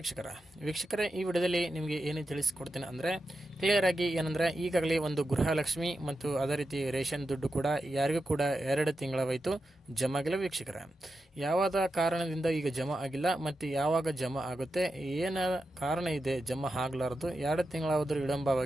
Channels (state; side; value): normal; both; correlation 0.89